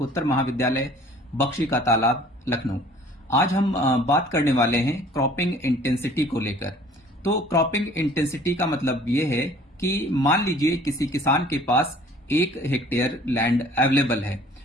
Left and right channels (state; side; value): normal; both; correlation 0.52